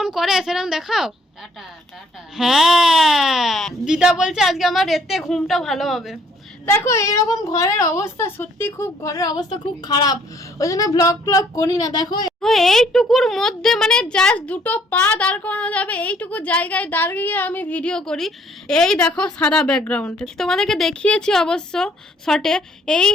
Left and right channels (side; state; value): both; normal; correlation 0.63